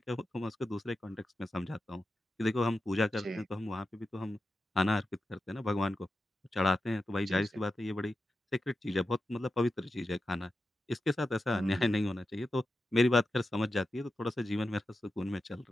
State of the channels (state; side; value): normal; both; correlation 0.90